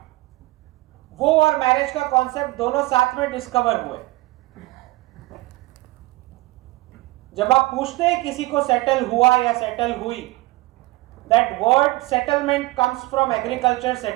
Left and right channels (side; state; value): left; quieter; 20.5 dB